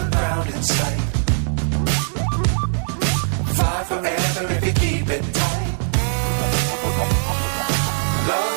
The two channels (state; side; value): silent; left; 65 dB below the other